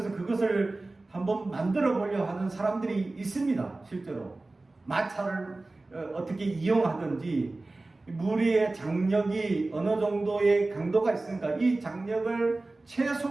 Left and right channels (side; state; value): left; quieter; 3.1 dB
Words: 그것을 한번 만들어 보려 하는 사람들이 있습니다. 실제로 마차를 어떻게 이용하든지 무리의 장력이 어느 정도의 강도가 있으니까 이 장력을